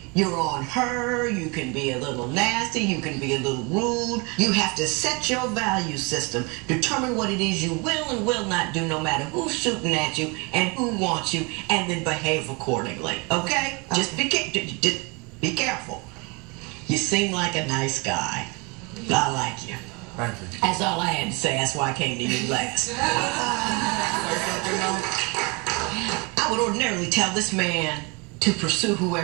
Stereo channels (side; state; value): left; quieter; 29.6 dB